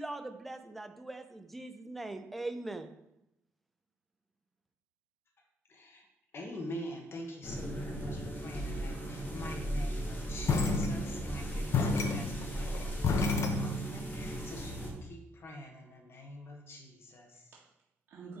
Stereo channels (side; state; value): both; normal; correlation 0.67